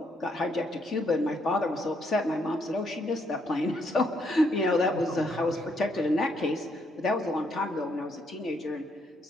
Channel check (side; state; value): both; normal; correlation 0.73